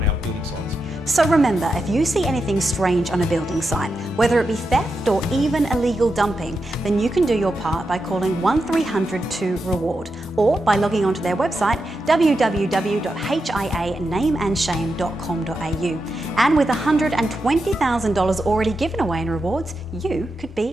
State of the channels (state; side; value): normal; both; correlation 0.87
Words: our building sites. So remember, if you see anything strange on a building site, whether it be theft or even illegal dumping, then you can do your part by calling 1300 2REWARD or by logging onto their website www.hianameandshame.com.au. And with $120,000 already given away in rewards, you could